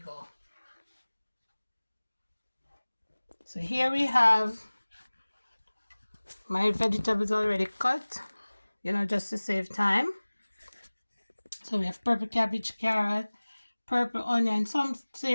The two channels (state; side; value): inverted; both; correlation -1.00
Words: So here we have my vegetables already cut, just to save time. So we have purple cabbage, carrot, purple onion. Some